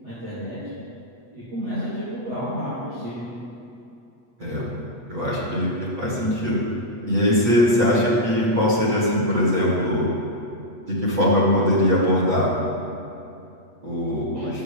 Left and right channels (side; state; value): left; late; 8.2 ms